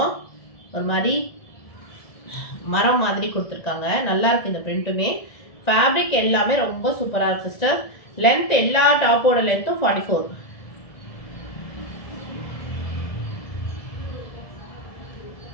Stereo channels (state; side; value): late; right; 1.7 ms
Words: ஒரு மாதிரி மரம் மாதிரி கொடுத்துருக்காங்க, நல்லா இருக்கு இந்த பிரிண்ட்டுமே. ஃபேப்ரிக் எல்லாமே ரொம்ப சூப்பராக இருக்கு சிஸ்டர். லென்த் எல்லா டாப்போட லென்த்தும் 44.